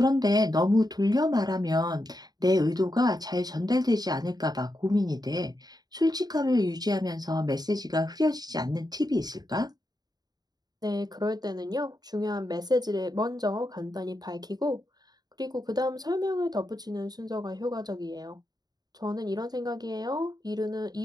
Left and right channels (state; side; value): late; left; 0.19 ms